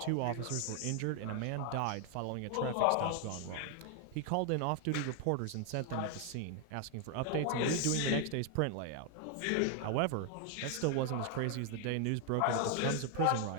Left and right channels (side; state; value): both; different; correlation 0.00